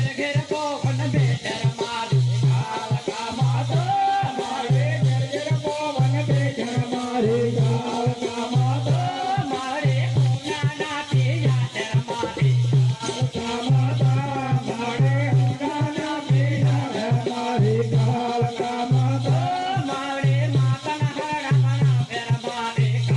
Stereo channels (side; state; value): both; identical; correlation 1.00